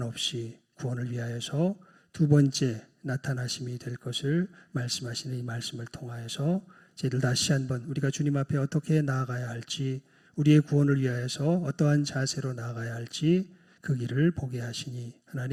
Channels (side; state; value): both; identical; correlation 1.00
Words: 구원을 위하여서 두 번째 나타나심이 될 것을 말씀하시는 이 말씀을 통하여서 저희들 다시 한번 우리가 주님 앞에 어떻게 나아가야 할지, 우리의 구원을 위하여서 어떠한 자세로 나아가야 할지 그 길을 보게 하시니